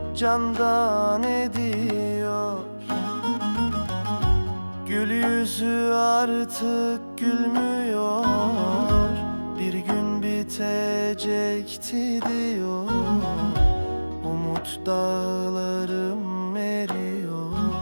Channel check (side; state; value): both; inverted; correlation -1.00